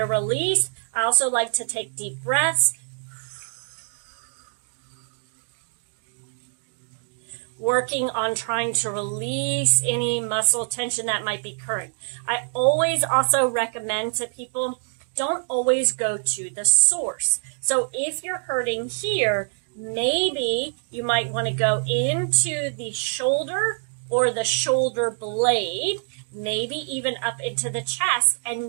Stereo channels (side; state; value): left; silent; digital silence